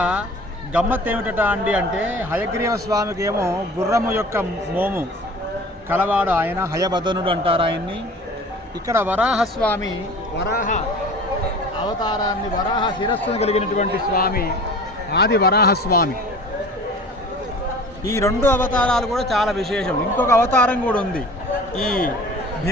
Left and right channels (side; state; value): both; normal; correlation 0.42